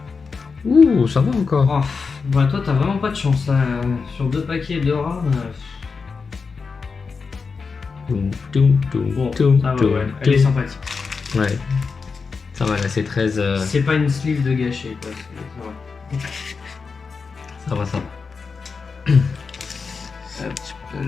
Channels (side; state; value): right; quieter; 5.0 dB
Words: Ouh, ça va encore. Oh, bah toi, t'as vraiment pas de chance là. Sur 2 paquets de rares. Bon, ça va, ouais. Elle est sympathique. Ouais. Ça va, là, c'est 13. C'est pas une sleeve de gâché, quoi. Ça va, ça va.